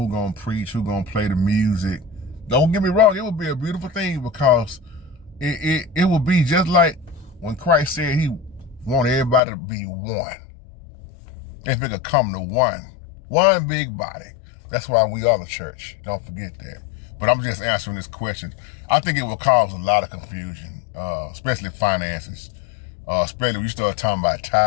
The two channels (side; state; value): right; drops out; at 9.4 s